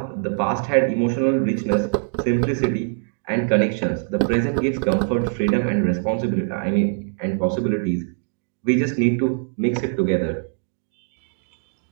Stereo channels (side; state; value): left; silent; digital silence